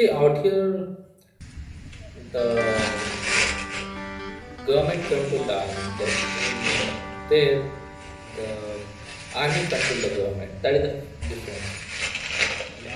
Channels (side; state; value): both; identical; correlation 1.00